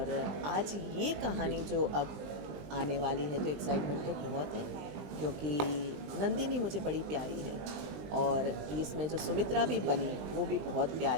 आज ये कहानी जो अब आने वाली है तो एक्साइटमेंट तो बहुत है, क्योंकि नंदिनी मुझे बड़ी प्यारी है और इसमें जो सुमित्रा भी बनी वो भी बहुत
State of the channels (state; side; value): late; left; 20 ms